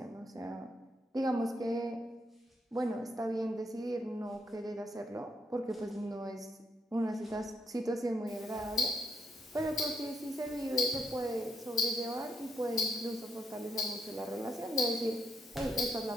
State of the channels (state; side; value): normal; both; correlation 0.77